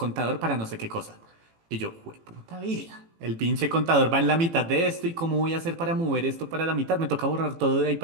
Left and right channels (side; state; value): left; late; 18 ms